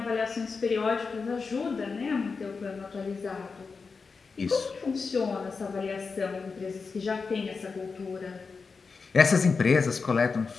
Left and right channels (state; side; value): quieter; right; 4.8 dB